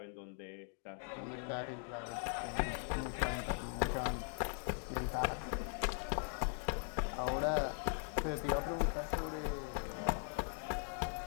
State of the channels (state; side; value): silent; right; 51 dB below the other